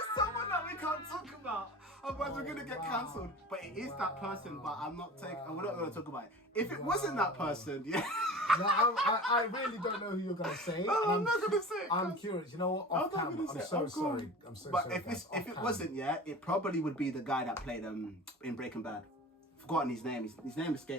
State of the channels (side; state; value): both; normal; correlation 0.37